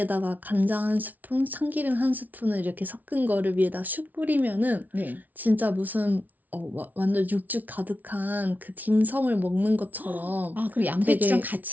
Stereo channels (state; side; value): late; left; 0.078 ms